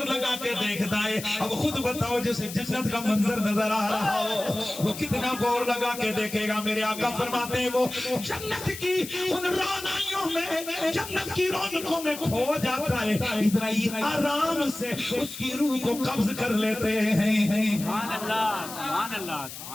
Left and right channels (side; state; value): left; noise; hiss, 11 dB below the sound